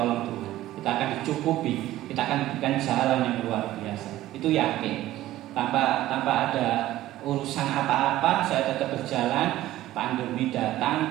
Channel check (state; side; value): quieter; left; 15.0 dB